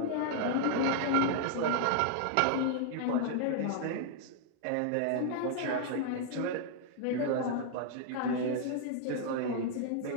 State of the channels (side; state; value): both; different; correlation 0.00